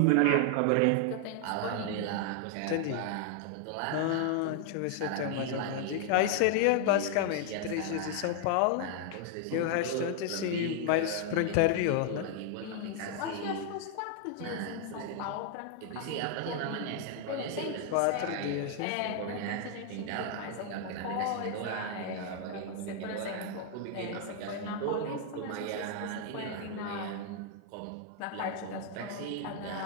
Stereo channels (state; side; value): different; both; correlation 0.00